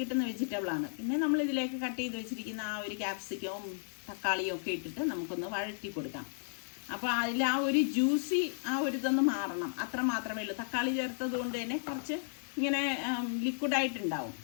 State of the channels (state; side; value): silent; right; digital silence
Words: വെജിറ്റബിളാണ്. പിന്നെ നമ്മൾ ഇതിലേക്ക് കട്ട് ചെയ്ത് വെച്ചിരിക്കുന്ന ആ ഒരു ക്യാപ്സിക്കവും തക്കാളിയും ഒക്കെ ഇട്ടിട്ട് നമുക്കൊന്ന് വഴറ്റി കൊടുക്കാം. അപ്പോൾ അതിൽ ആ ഒരു ജ്യൂസി ആ ഒരു ഇതൊന്ന് മാറണം, അത്ര മാത്രമേ ഉള്ളൂ. തക്കാളി ചേർത്തത് കൊണ്ട് തന്നെ കുറച്ച് ഇങ്ങനെ ലിക്വിഡായിട്ടുണ്ടാവും,